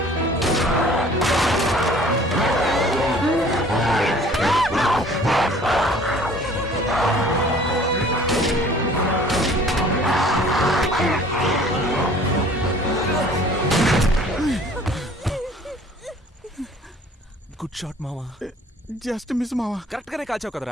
గుడ్ షాట్ మామ. జస్ట్ మిస్ మామ. కరెక్ట్ గానే కాల్చావు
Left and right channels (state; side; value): normal; both; correlation 0.51